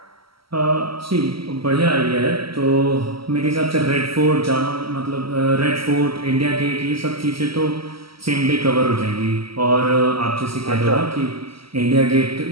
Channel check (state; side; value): late; left; 0.75 ms